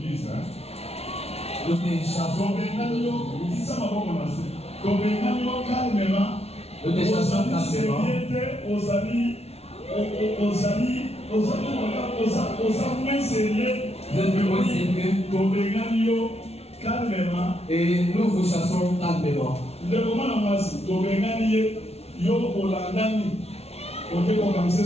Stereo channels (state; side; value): late; right; 0.30 ms